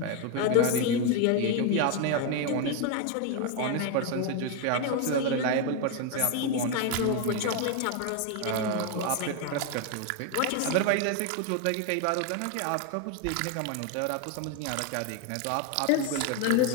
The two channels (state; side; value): different; both; correlation 0.01